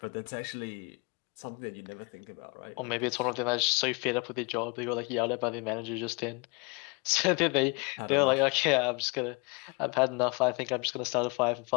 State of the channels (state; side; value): quieter; right; 30.5 dB